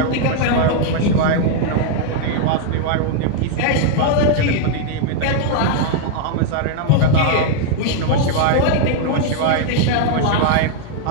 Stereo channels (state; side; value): different; both; correlation 0.00